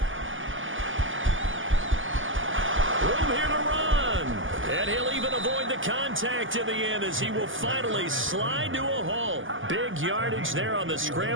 Room here to run. And he'll even avoid the contact in the end as he will finally slide to a halt. Big yardage there on the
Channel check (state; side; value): late; left; 0.58 ms